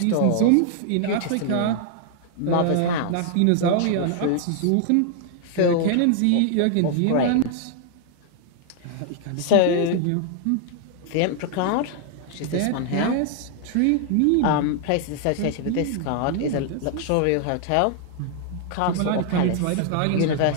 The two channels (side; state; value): both; different; correlation 0.00